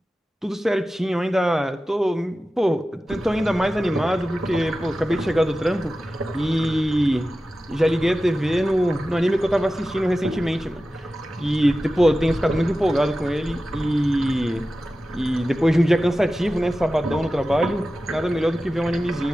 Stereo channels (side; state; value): both; normal; correlation 0.94